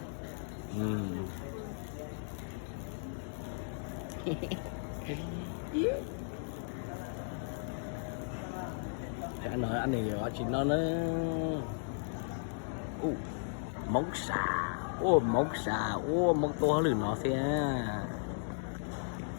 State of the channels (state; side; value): silent; right; digital silence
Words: Chả nói anh này ở chỉ nó móng xà, móng xà, móng to hơn nó xe.